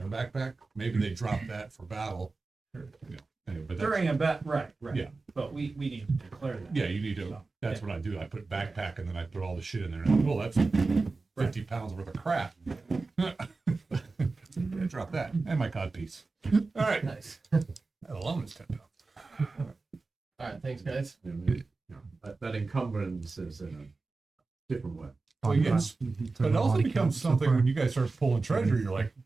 backpack. Maybe they drop that for battle. Sure. Yeah. Anyway, but that's, During a bet, right. Yeah. But we need to declare that. yeah, you need to. So, That's what I do. I put backpack and then I put all the shit in there. And, well, that's 50 pounds worth of crap. Yeah, drop that and my codpiece. All right, Nice. that alone is 10 pounds. All right. Thanks, guys. That encumbrance is in a different way. Well, yes, but it also becomes something when you guys start pulling treasure. You're like,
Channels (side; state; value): left; quieter; 3.8 dB